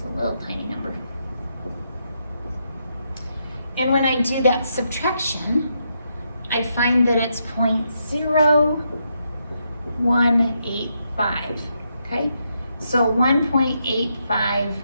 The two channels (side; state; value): both; inverted; correlation -0.80